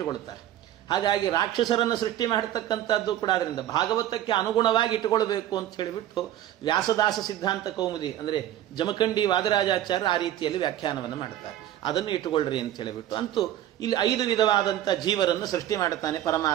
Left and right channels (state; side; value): quieter; left; 12.4 dB